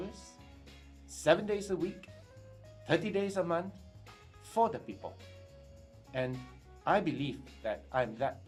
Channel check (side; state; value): both; identical; correlation 1.00